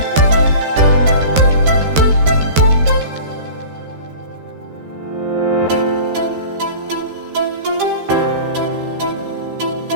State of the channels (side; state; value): left; late; 13 ms